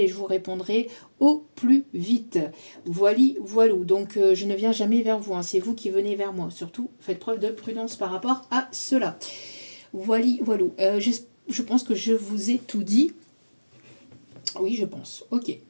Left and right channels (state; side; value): inverted; both; correlation -1.00